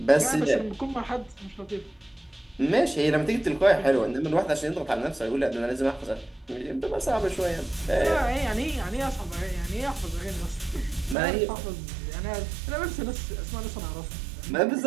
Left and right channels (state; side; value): drops out; left; at 11.2 s